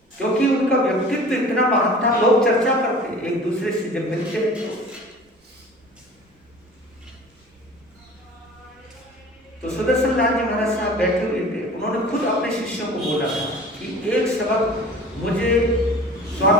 क्योंकि उनका व्यक्तित्व इतना महान था। लोग चर्चा करते एक दूसरे से जब मिलते तो सुदर्शन लाल जी महाराज साहब बैठे हुए थे। उन्होंने खुद अपने शिष्यों को बोला था कि एक सबक मुझे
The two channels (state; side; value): normal; both; correlation 0.43